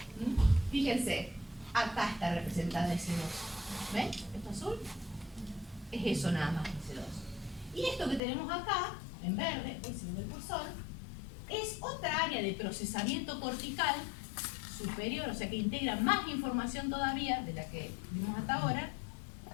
fíjense, acá está representada S2. ¿Ven? Esto azul es eso nada más, S2. Y esto que tenemos acá, en verde, hoy se ve el cursor, es otra área de procesamiento cortical superior, o sea que integra más información todavía de la que vimos hasta ahora,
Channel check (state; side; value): drops out; right; at 8.2 s